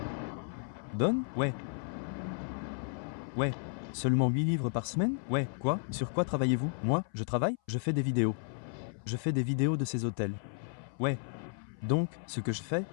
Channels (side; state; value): right; silent; 55 dB below the other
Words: donne? Ouais. Ouais. Seulement 8 livres par semaine? Ouais. Quoi? Sur quoi travaillez-vous? Moi, je travaille, je fais des vidéos. Je fais des vidéos de ces hôtels. Ouais. Donc, ce que je fais,